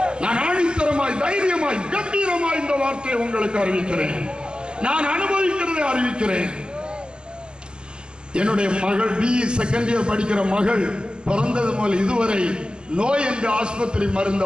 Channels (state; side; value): late; left; 0.048 ms